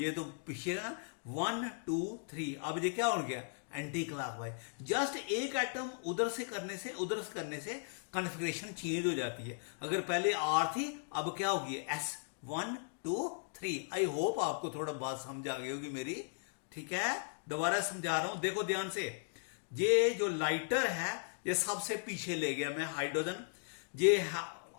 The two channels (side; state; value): right; silent; digital silence